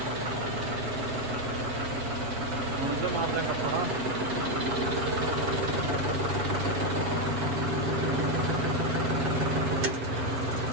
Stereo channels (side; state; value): left; late; 7.6 ms